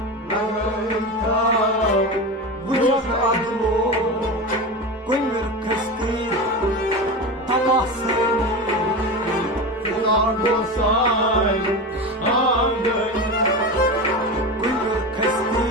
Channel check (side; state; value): both; normal; correlation 0.24